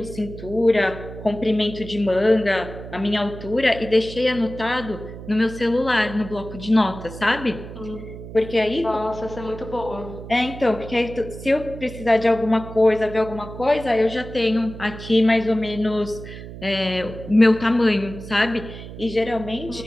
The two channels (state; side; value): noise; right; hum, 12 dB below the sound